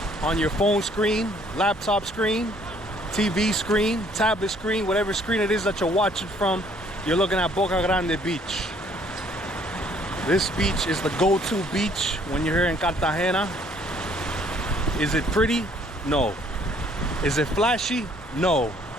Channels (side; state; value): both; normal; correlation 0.62